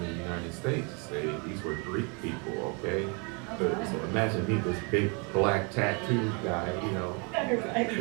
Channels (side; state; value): left; quieter; 33.6 dB